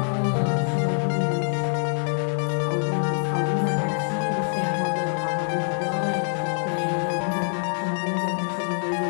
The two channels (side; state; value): right; silent; digital silence